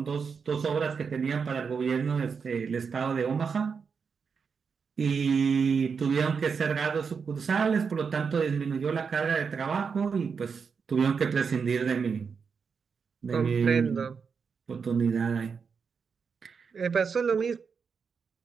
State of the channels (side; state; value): left; quieter; 5.8 dB